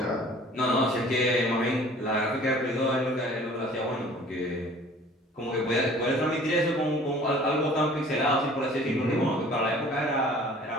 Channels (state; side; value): normal; both; correlation 0.49